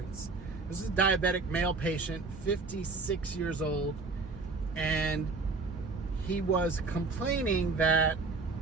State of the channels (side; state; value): left; quieter; 3.9 dB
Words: This is a diabetic male patient, 56 years old, and he was complaining that